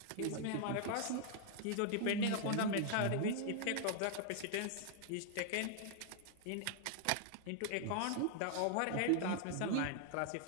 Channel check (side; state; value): both; different; correlation 0.00